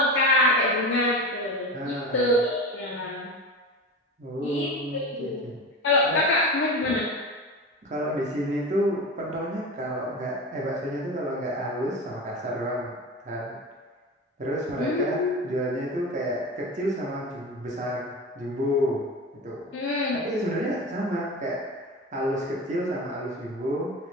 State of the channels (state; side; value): normal; both; correlation 0.27